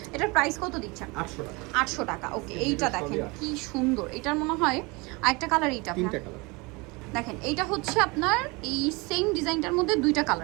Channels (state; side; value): quieter; left; 26.4 dB